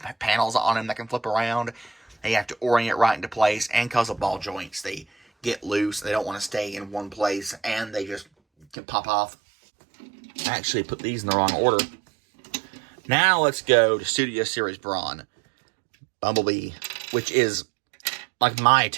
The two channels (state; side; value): drops out; left; at 8.8 s